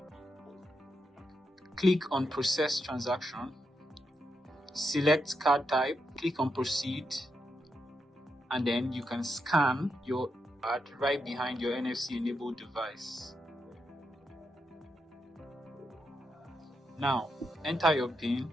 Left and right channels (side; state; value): both; normal; correlation 0.83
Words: click on process transaction, select card type, click on proceed, and then you can scan your card right behind your NFC enabled device. Now enter your PIN